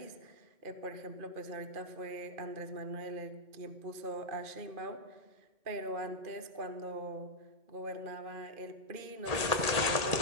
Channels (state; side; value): late; left; 1.8 ms